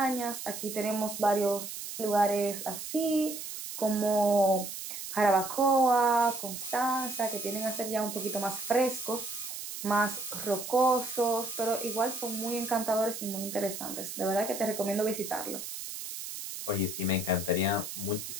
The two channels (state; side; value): noise; right; hiss, 8 dB below the sound